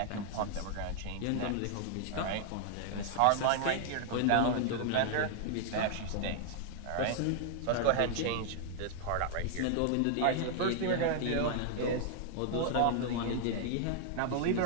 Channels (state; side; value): different; both; correlation 0.00